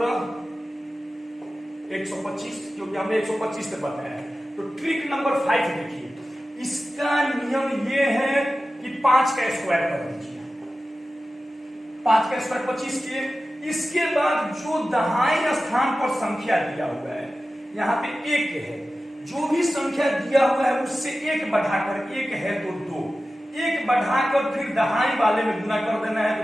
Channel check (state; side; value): normal; both; correlation 0.94